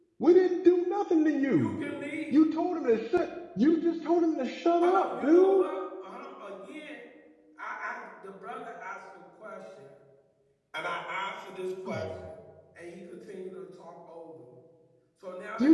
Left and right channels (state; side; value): identical; both; correlation 1.00